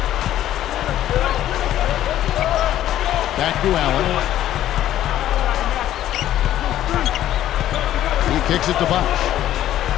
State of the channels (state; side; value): quieter; right; 12.5 dB